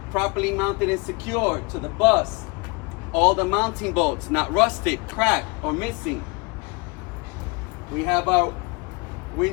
properly mounted and secure to the bus. All the mounting bolts, not rusted, cracked, or missing. We have our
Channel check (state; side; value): quieter; right; 28.5 dB